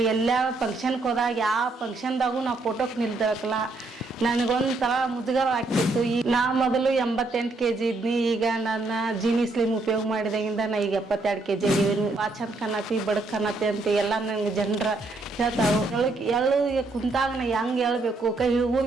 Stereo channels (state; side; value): quieter; left; 3.2 dB